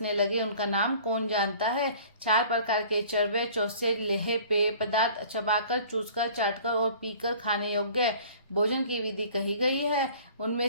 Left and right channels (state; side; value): inverted; both; correlation -0.48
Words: लगे, उनका नाम कौन जानता है। 4 प्रकार के चरवे चौसे लेहे पेय पदार्थ चबाकर, चूसकर, चाटकर और पीकर खाने योग्य भोजन की विधि कही गई है। उनमें